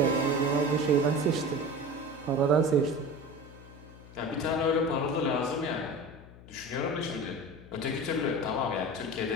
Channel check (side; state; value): left; noise; hum, 19 dB below the sound